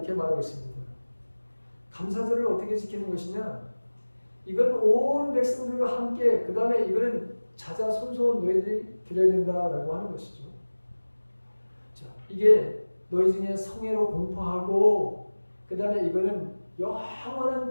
말하고 있습니다. 감사절을 어떻게 지키는 것이냐? 이건 온 백성들과 함께 그 다음에 이거는 자자손손 너희들이 드려야 된다라고 하는 것이죠. 자, 이게 너희 중에 성애로 공포하고 그 다음에 이거는 영원한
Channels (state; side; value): inverted; both; correlation -1.00